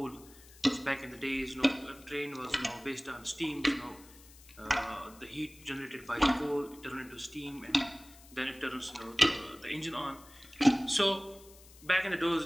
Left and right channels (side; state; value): left; noise; hiss, 22 dB below the sound